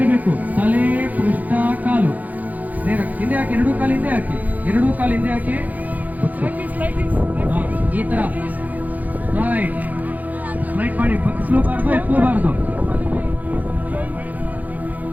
ತಲೆ ಪೃಷ್ಠ ಕಾಲು ನೇರ ಹಿಂದೆ ಹಾಕಿ, ಎರಡೂ ಕಾಲು ಹಿಂದೆ ಹಾಕಿ, ಎರಡೂ ಕಾಲು ಹಿಂದೆ ಹಾಕಿ, ಈ ತರ ರೈಟ್ ರೈಟ್ ಮಾಡಿ, ಬಗ್ಸ್ಲೂಬಾರ್ದು ಎತ್ತಲೂಬಾರ್ದು.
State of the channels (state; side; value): late; left; 0.080 ms